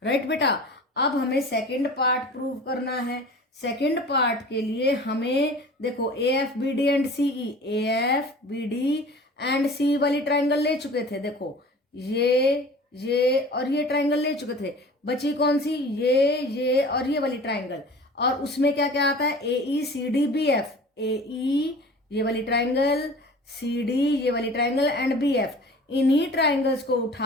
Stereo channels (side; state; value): both; normal; correlation 0.42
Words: right बेटा। अब हमें second part prove करना है। सेकंड पार्ट के लिए हमें देखो A F B D and C E, A F B D and C वाली ट्राइंगल ले चुके थे। देखो ये और ये ट्राइंगल ले चुके थे। बची कौन सी? ये और ये वाली ट्राइंगल। और उसमें क्या क्या आता है? ए ई सी डी बी एफ, ए ई ये वाली ट्राइंगल, सी डी ये वाली ट्राइंगल एंड बी एफ। इन्हीं ट्राइंगल्स को